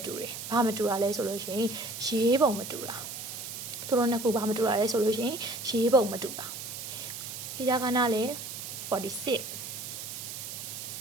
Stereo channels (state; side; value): noise; right; hiss, 8 dB below the sound